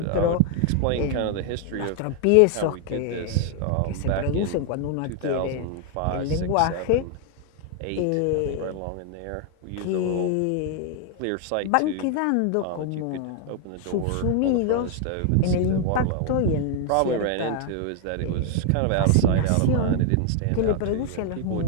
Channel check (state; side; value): different; both; correlation 0.00